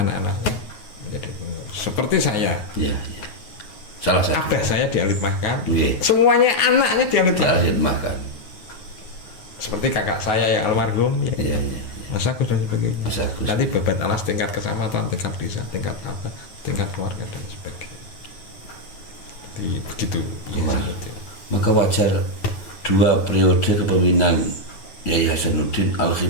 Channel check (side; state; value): right; late; 9.4 ms